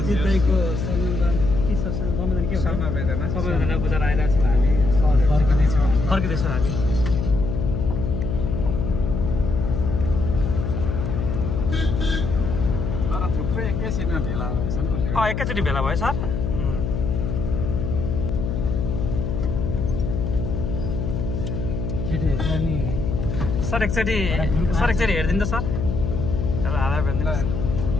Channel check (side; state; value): left; noise; hum, 2 dB below the sound